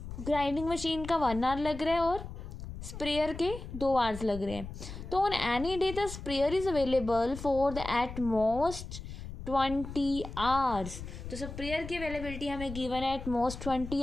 ग्राइंडिंग मशीन का 1 hour लग रहा है और स्प्रेयर के 2 hours लग रहे हैं। तो on any day the sprayer is available for the at most 20 hours। तो स्प्रेयर की अवेलेबिलिटी हमें गिवन है एट मोस्ट 20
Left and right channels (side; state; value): left; noise; rumble, 10 dB below the sound